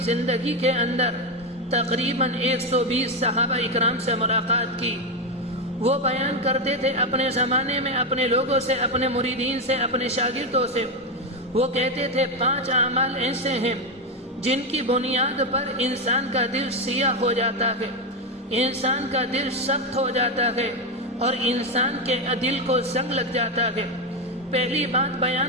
زندگی کے اندر تقریباً 120 صحابہ اکرام سے ملاقات کی، وہ بیان کرتے تھے اپنے زمانے میں اپنے لوگوں سے، اپنے مریدین سے، اپنے شاگردوں سے۔ وہ کہتے تھے 5 اعمال ایسے ہیں جن کی بنیاد پر انسان کا دل سیاہ ہو جاتا ہے، انسان کا دل سخت ہو جاتا ہے اور انسان کے دل کو زنگ لگ جاتا ہے۔ پہلی بات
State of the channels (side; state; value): both; normal; correlation 0.10